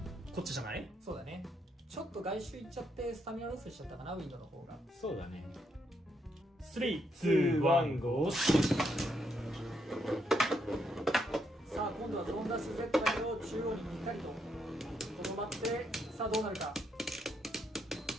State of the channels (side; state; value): both; normal; correlation 0.77